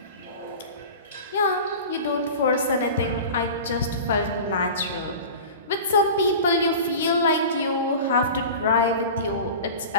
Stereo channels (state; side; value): inverted; both; correlation -0.34